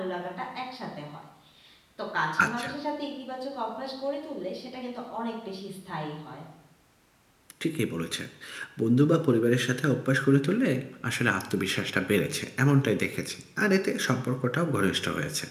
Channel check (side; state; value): both; identical; correlation 1.00